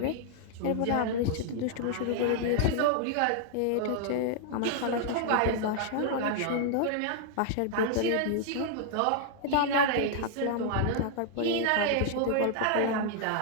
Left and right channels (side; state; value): both; different; correlation -0.01